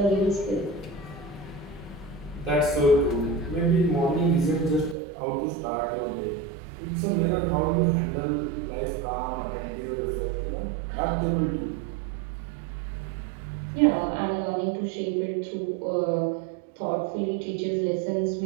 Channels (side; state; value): left; drops out; at 5.0 s